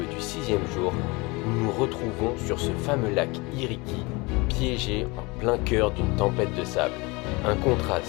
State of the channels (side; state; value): right; quieter; 25.6 dB